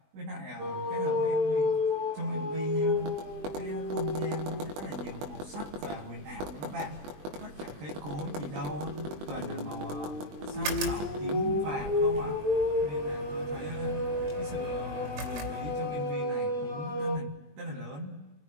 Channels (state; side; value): late; left; 20 ms